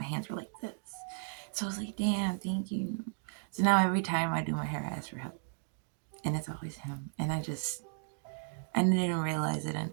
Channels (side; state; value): left; silent; digital silence